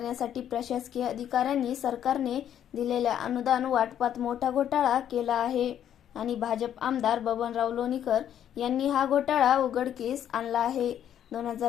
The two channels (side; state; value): right; quieter; 10.1 dB